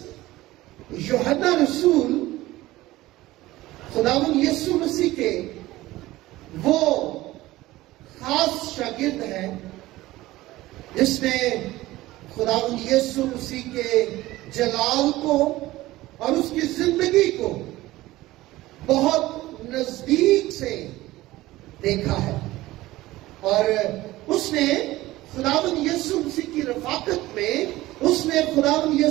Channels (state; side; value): quieter; left; 17.4 dB